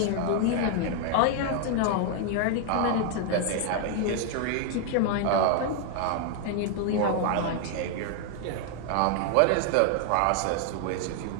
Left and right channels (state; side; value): different; both; correlation 0.00